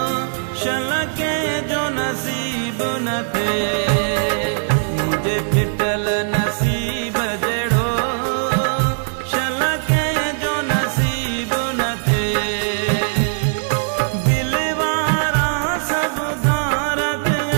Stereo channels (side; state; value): left; silent; digital silence